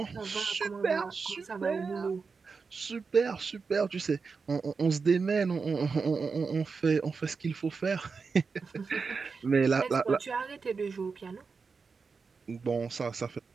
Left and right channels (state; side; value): quieter; left; 4.9 dB